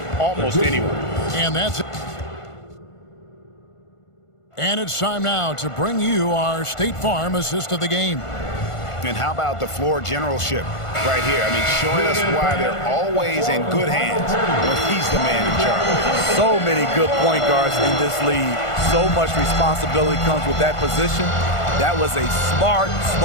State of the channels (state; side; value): late; right; 1.5 ms